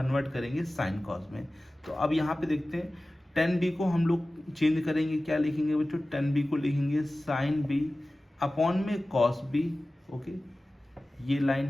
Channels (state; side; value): normal; both; correlation 0.97